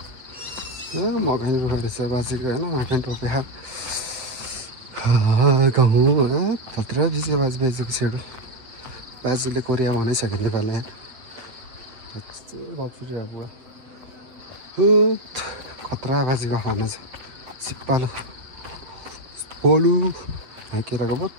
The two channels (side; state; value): left; late; 7.9 ms